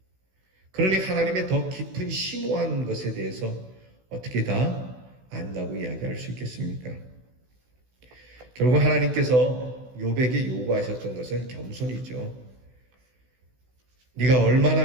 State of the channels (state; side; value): late; left; 16 ms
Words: 그러니 하나님의 더 깊은 심오한 것에 대해서 어떻게 다 안다고 이야기할 수 있겠습니까? 결국 하나님께서 욥에게 요구하셨던 것은 겸손이죠. 네가